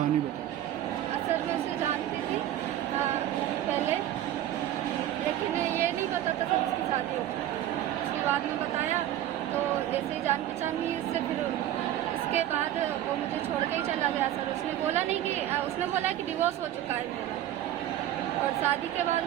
बताओ। सर, मैं उसे जानती थी पहले, लेकिन ये नहीं पता था कि उसकी शादी होती है। उसके बाद में बताया तो जैसे ही जान पहचान हुई उससे, फिर उसके बाद वो मुझे छोड़ के ही चला गया। सर, उसने बोला नहीं कि उसने बोला कि डिवोर्स हो चुका है मेरा, और शादी के बाद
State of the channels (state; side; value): quieter; left; 12.5 dB